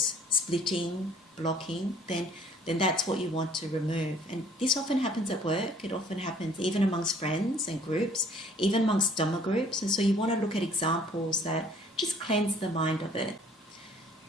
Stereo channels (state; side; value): normal; both; correlation 0.57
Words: splitting, blocking, then that's what you want to remove. And this often happens at work. It often happens even amongst friends and groups, even amongst Dhamma groups. And so you want to look at examples that just cleanse the mind of it.